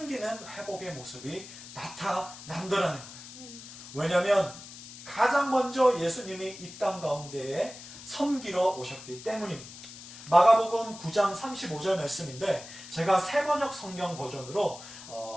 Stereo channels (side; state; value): left; noise; hiss, 15 dB below the sound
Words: 회복의 모습이 나타난다라는 거예요. 왜냐하면 가장 먼저 예수님이 이 땅 가운데에 섬기러 오셨기 때문입니다. 마가복음 9장 35절 말씀인데, 제가 새번역 성경 버전으로